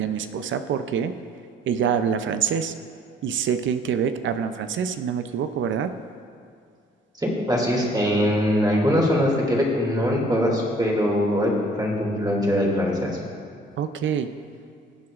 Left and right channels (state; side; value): normal; both; correlation 0.56